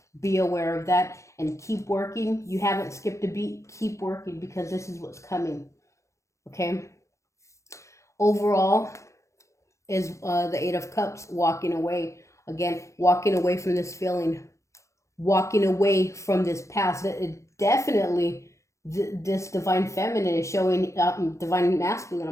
be aware of that and keep working. You haven't skipped a beat. Keep working, because this is what's coming. Okay? Overall is the Eight of Cups, walking away. Again, walking away from this feeling. Walking away from this past. Definitely this divine feminine is showing, divine masculine,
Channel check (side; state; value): right; late; 0.14 ms